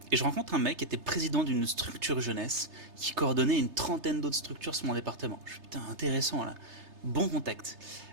rencontre un mec qui était président d'une structure jeunesse qui coordonnait une trentaine d'autres structures sur mon département. Je suis putain, intéressant là. Bon contact.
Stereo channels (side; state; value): left; late; 3.3 ms